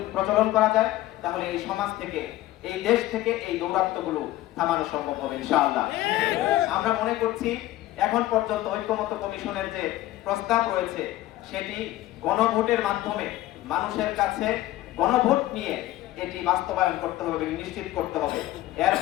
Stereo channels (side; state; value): right; quieter; 15.7 dB